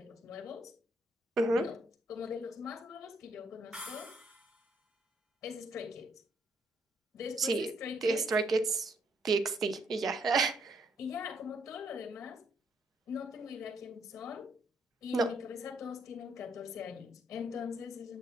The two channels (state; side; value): normal; both; correlation 0.71